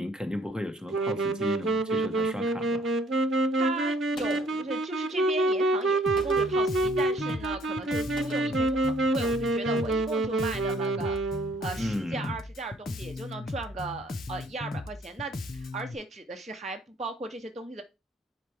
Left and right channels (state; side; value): normal; both; correlation 0.61